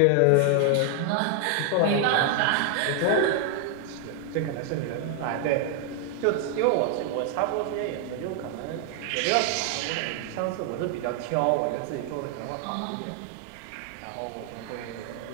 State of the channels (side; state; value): both; different; correlation 0.00